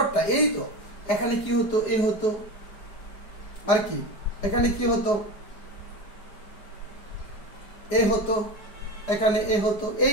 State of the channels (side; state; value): right; late; 4.9 ms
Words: এই তো এখানে কি হতো? এ হতো। আর কি এখানে কি হতো? এ হতো, এখানে এ হতো।